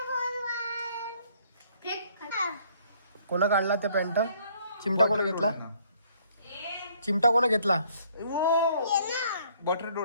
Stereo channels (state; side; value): inverted; both; correlation -0.63